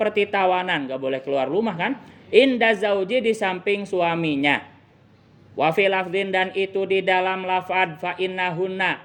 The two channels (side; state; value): both; identical; correlation 1.00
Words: tawanan, gak boleh keluar rumah kan. Inda zauji di samping suaminya. Wa fi lafdin dan itu di dalam lafad fa innahunna.